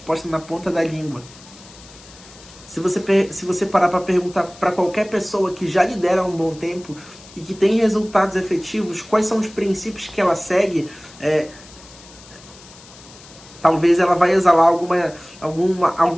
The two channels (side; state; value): left; noise; hiss, 21 dB below the sound